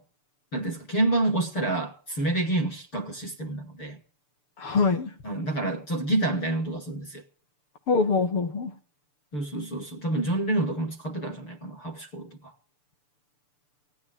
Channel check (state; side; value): late; right; 6.8 ms